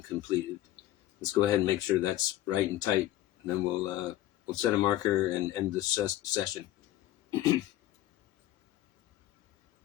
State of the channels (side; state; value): right; quieter; 14.4 dB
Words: completed? Let's go ahead and make sure that's right and tight, and then we'll set a marker and end the session.